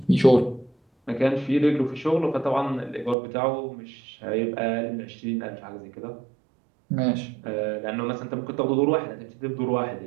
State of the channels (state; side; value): drops out; left; at 3.2 s